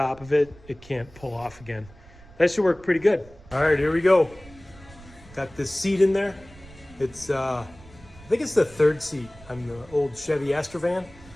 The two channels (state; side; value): noise; right; rumble, 22 dB below the sound